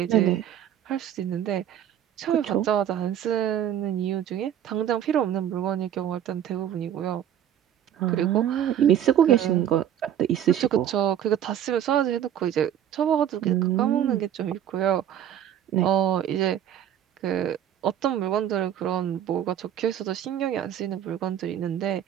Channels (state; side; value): quieter; left; 10.4 dB